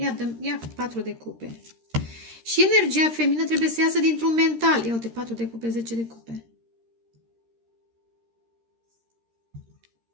ia 4 de cupe. Și energia feminină trebuie să iasă dintr-un mental. Ia uite, 4 de cupe, 10 de cupe.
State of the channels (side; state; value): left; late; 13 ms